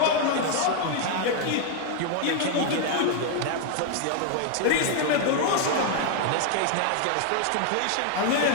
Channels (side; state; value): both; different; correlation 0.00